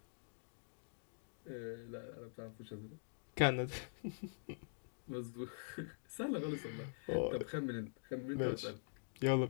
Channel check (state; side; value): silent; right; digital silence